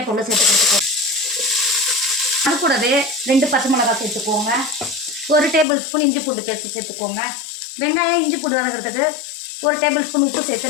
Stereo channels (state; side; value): drops out; right; at 5.7 s